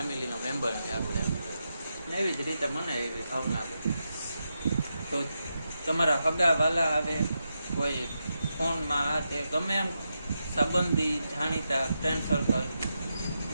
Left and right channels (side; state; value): both; inverted; correlation -0.86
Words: મેમ્બર છે આપણે, ને એવી જ રીતે મને એવી ભાવના આવે. તો તમારા હગા વાલા આવે, કોઈ ફોનમાં આ તે ગમે એમ સંબંધી જાણીતા ફ્રેન્ડ સર્કલ